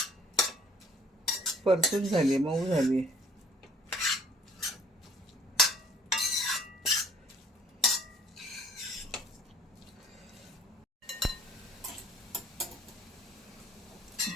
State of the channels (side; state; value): both; normal; correlation 0.55